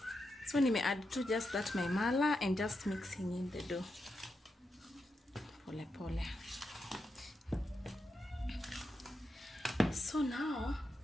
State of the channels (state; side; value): normal; both; correlation 0.86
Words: So nime add to just that my mala and just mixing in the dough pole pole. So now